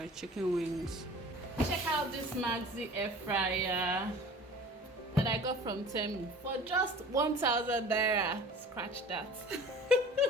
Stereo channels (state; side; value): normal; both; correlation 0.43